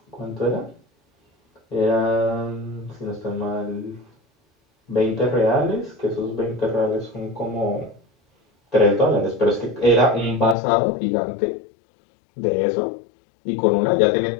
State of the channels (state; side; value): drops out; right; at 10.6 s